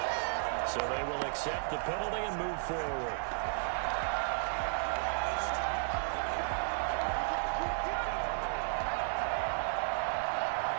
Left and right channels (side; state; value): left; silent; digital silence